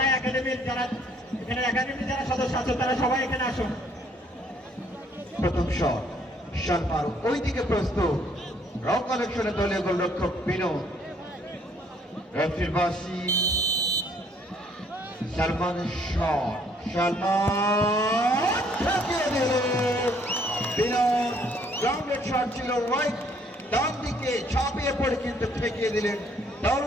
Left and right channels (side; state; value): both; normal; correlation 0.64